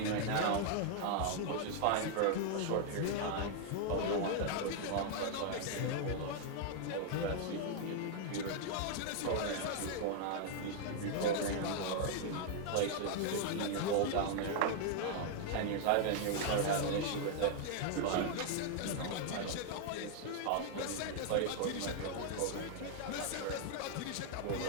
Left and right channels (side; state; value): both; different; correlation 0.00